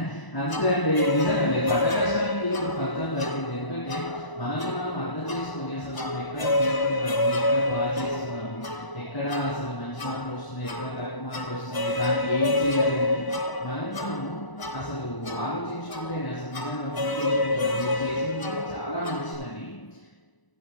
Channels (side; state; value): right; late; 1.0 ms